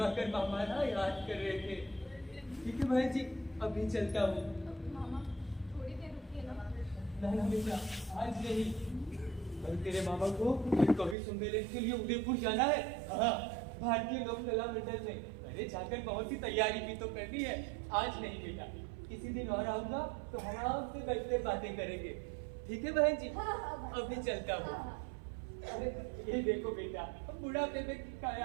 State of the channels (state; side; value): drops out; left; at 11.2 s